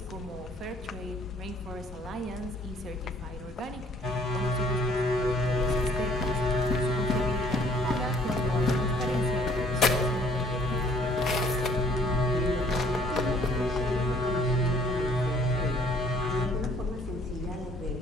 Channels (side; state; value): both; normal; correlation 0.60